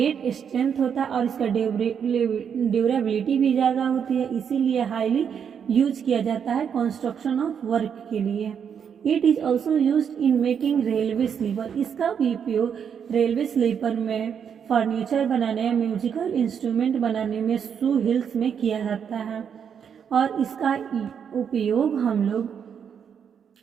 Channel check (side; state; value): left; quieter; 7.6 dB